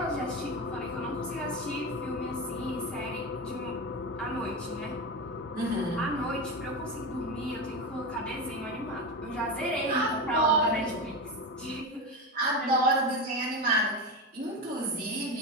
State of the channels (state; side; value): normal; both; correlation 0.19